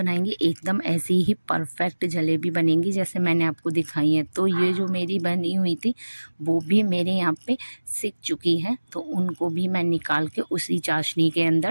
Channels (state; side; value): inverted; both; correlation -1.00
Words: एकदम ऐसी ही परफेक्ट जलेबी बनेंगी जैसे मैंने आपको दिखाई है। तो ये जो मेरी बनी हुई थी वो भी मेरे यहाँ पे सिक चुकी है, तो उनको भी मैं निकाल के उसी चाशनी के